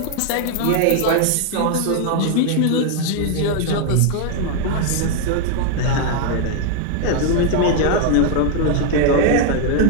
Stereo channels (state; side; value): different; both; correlation 0.00